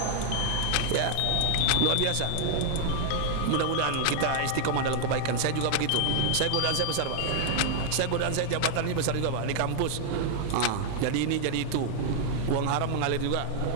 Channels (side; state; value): both; different; correlation 0.00